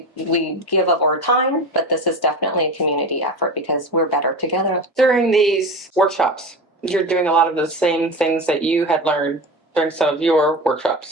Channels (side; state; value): both; normal; correlation 0.28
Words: We give up our time, but this is definitely a community effort because we're better together. During these workshops, you're doing a lot of the same things that you had learned during some of your workshops.